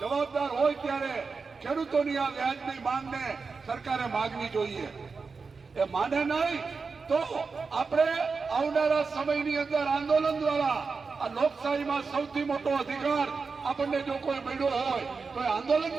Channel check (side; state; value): left; quieter; 4.7 dB